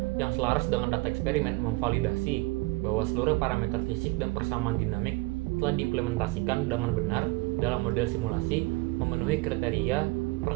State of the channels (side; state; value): left; quieter; 23.3 dB